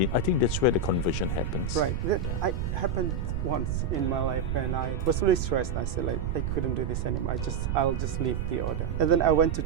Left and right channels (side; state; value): right; noise; rumble, 2 dB below the sound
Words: I think that's where the conversion happens. Right. That happened once in my life when I was really stressed. I said, I couldn't do this anymore. I'll just leave the order. And then I went to